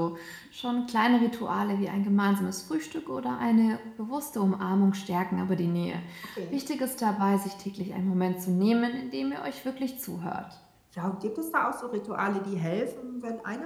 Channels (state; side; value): identical; both; correlation 1.00